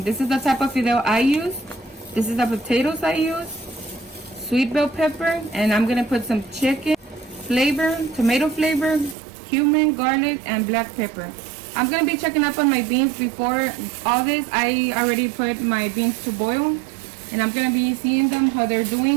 This is the type of fideo I use. This is the potatoes I use, sweet bell pepper, and I'm going to put some chicken flavor, tomato flavor, cumin, garlic, and black pepper. I'm going to be checking up on my beans before all this. I already put my beans to boil, and I'm going to be seeing them, how they're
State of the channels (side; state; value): left; drops out; at 9.2 s